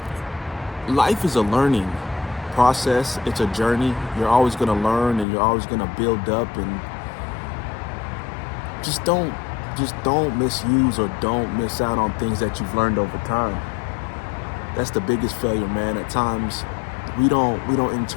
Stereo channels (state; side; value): drops out; right; at 5.2 s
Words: life is a learning process. It's a journey. You're always going to learn and you're always going to build up, and just don't misuse or don't miss out on things that you've learned over time. That's the biggest failure, man. At times we don't